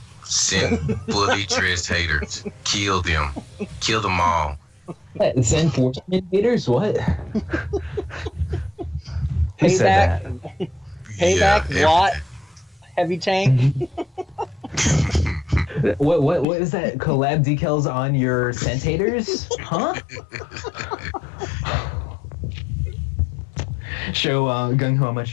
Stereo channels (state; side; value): drops out; right; at 16.4 s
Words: Send fully dressed haters. Kill them. Kill them all. What, send 14 haters? What? Who said that? Payback, Watt, heavy tank. What is that? Collab decals on your sentators? Huh? Show Gung Ho how